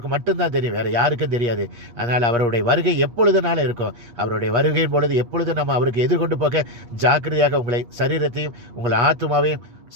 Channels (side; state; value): left; late; 8.5 ms